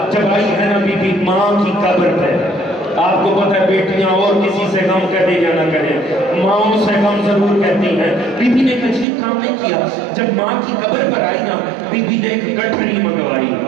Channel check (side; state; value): left; drops out; at 9.1 s